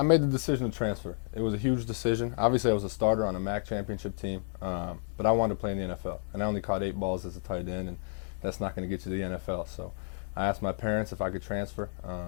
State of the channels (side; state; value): right; silent; 57 dB below the other